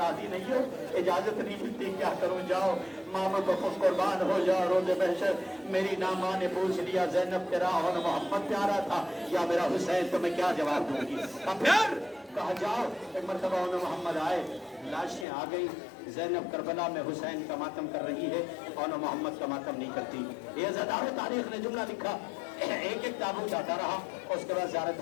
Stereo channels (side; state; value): right; drops out; at 15.2 s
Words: नहीं हो, इजाजत नहीं मिलती, क्या करूँ, जाओ मामा को कुर्बान हो जाओ, रोज़े महशर मेरी ना माँ ने पूछ लिया ज़ैनब तेरा और मोहम्मद प्यारा था या मेरा हुसैन, तो मैं क्या जवाब दूंगी। अब फिर कहा जाओ। एक मरतबा उन्हें मोहम्मद आए, लाशें आ गई, ज़ैनब करबला में हुसैन का मातम कर रही है और मोहम्मद का मातम नहीं करती। ये ज़दार तारीख ने जुमला लिखा, एक एक ताबूत आता रहा और उसके बाद ज़ियारत